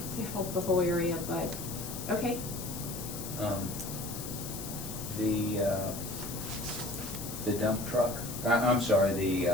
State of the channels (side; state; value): left; noise; hiss, 9 dB below the sound